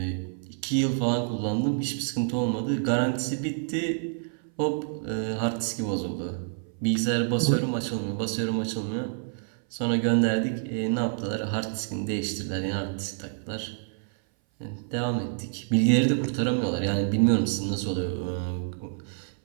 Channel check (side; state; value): left; silent; 58 dB below the other